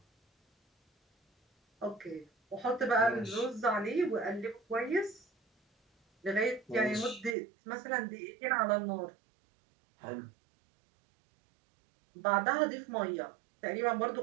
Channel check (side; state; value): left; drops out; at 7.4 s